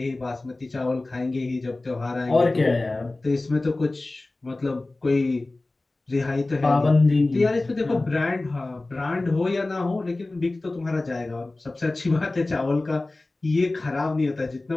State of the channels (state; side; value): quieter; right; 3.0 dB